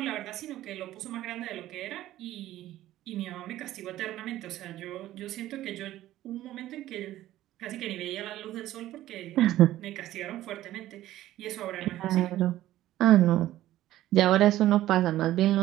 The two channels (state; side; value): quieter; left; 14.3 dB